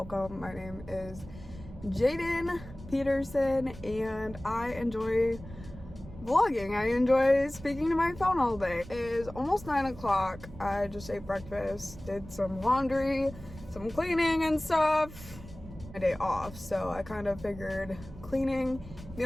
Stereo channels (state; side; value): noise; right; rumble, 15 dB below the sound